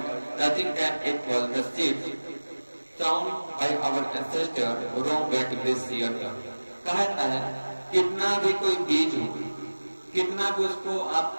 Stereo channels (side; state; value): both; inverted; correlation -1.00